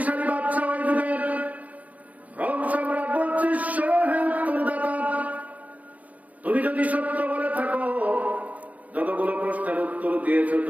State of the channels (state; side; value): late; left; 0.071 ms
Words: বাদশা ওই যুগের রোম সম্রাট বলছে, হে উত্তরদাতা, তুমি যদি সত্য বলে থাকো, যতগুলো প্রশ্নের উত্তর দিয়েছ